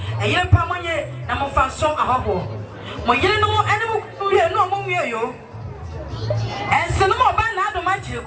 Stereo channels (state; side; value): identical; both; correlation 1.00